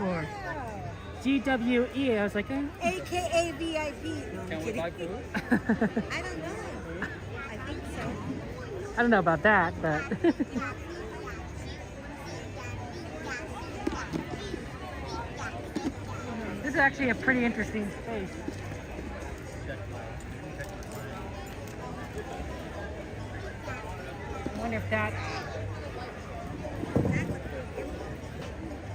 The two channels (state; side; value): identical; both; correlation 1.00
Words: GWE. I was like, AKA VIP. No, I'm kidding. I don't know. I think so. I don't know about that, but. This is actually a pretty interesting space. I wonder if that.